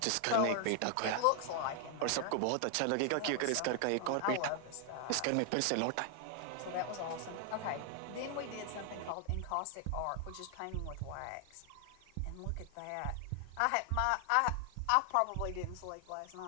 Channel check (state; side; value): different; both; correlation 0.00